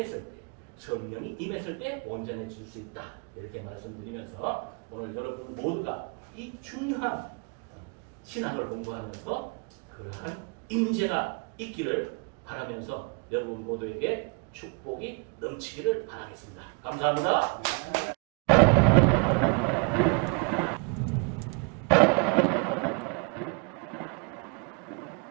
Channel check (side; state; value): left; quieter; 35.6 dB